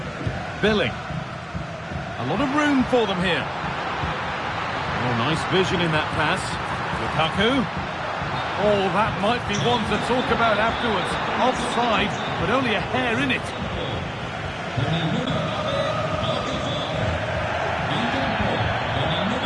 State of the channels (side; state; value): both; identical; correlation 1.00